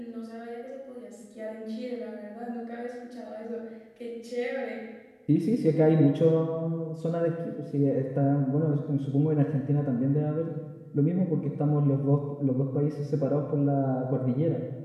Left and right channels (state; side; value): identical; both; correlation 1.00